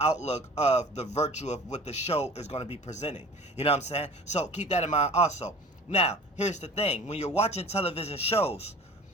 of the virtue of what the show is going to be presenting. You know what I'm saying? So keep that in mind also. Now, here's the thing. When you're watching television shows,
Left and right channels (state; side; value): normal; both; correlation 0.43